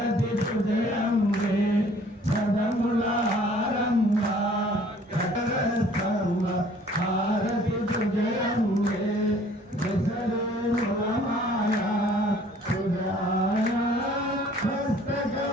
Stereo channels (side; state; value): both; normal; correlation 0.55